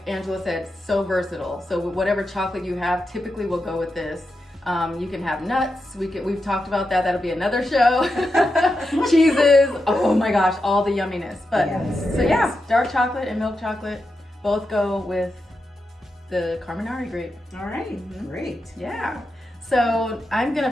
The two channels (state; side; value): normal; both; correlation 0.88